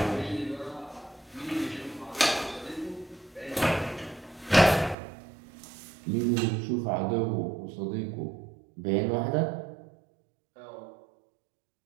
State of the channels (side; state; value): left; drops out; at 5.0 s